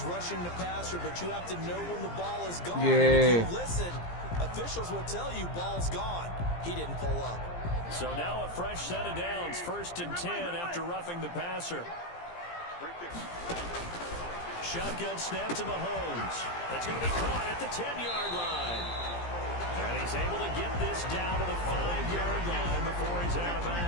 rushing the passer, but you have to know when the ball is gone. Yeah. If you listen, officials will tell you ball's gone. He didn't pull up. So now a fresh set of downs. 1st and 10 after roughing the passer. Shotgun snap to Mahomes. That's going to be caught at the 10-yard line. And he's able to get this down to the 5-yard line before he's out of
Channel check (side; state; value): right; late; 17 ms